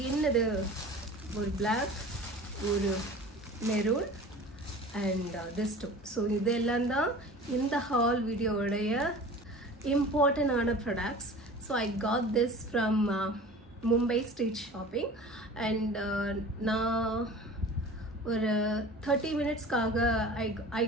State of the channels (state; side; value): normal; both; correlation 0.40